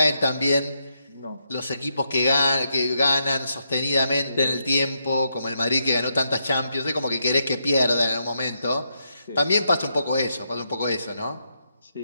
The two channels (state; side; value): inverted; both; correlation -0.80